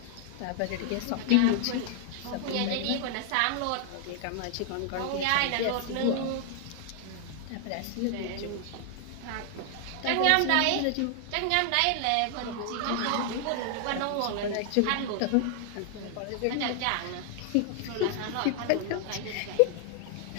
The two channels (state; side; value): different; both; correlation 0.00